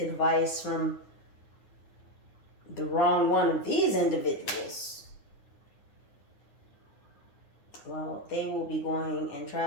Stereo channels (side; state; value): right; late; 9.5 ms